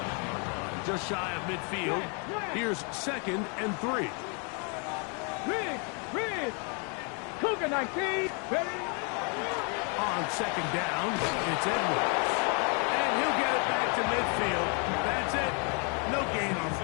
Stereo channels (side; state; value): right; quieter; 36.8 dB